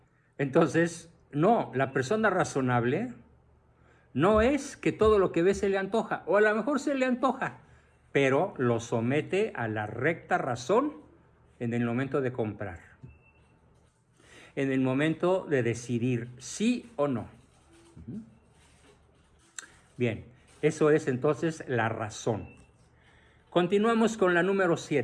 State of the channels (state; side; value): identical; both; correlation 1.00